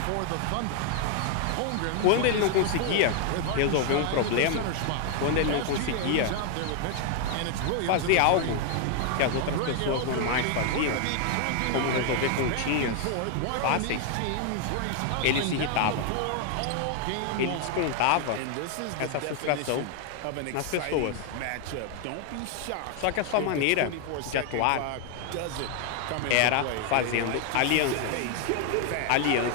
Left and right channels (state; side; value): different; both; correlation 0.00